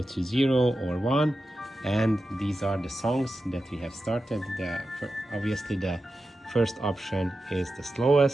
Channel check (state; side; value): normal; both; correlation 0.91